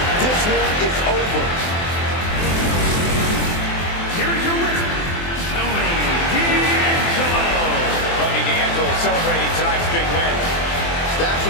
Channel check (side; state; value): right; late; 24 ms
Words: This one is over. Here is your winner, Tony D'Angelo. Tony D'Angelo celebrating tonight's big win. Stax